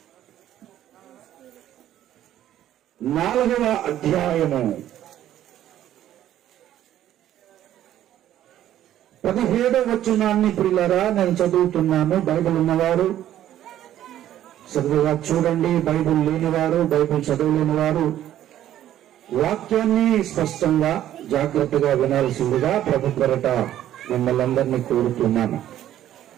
4వ అధ్యాయము 17వ వచనాన్ని ప్రియులారా నేను చదువుతున్నాను. బైబిల్ ఉన్నవారు చదువుగా చూడండి, బైబిల్ లేనివారు, బైబిల్ చదవలేని వారు వాక్యాన్ని స్పష్టంగా జాగ్రత్తగా వినాల్సిందిగా ప్రభు కొరట మిమ్మల్ని అందరినీ కోరుతున్నాను.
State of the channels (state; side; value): quieter; left; 12.1 dB